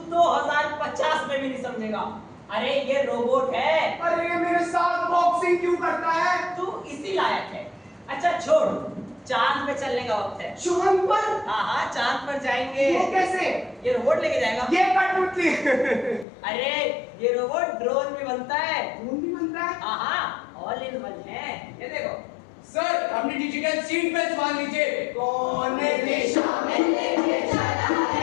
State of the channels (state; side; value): drops out; right; at 16.2 s